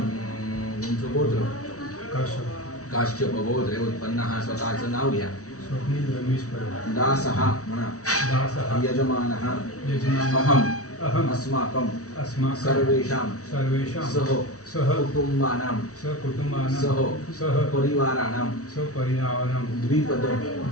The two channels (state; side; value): late; right; 0.66 ms